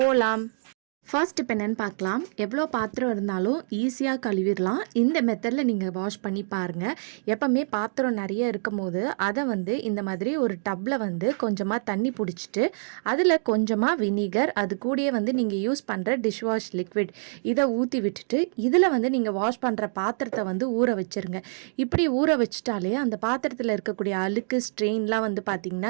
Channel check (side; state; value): left; silent; digital silence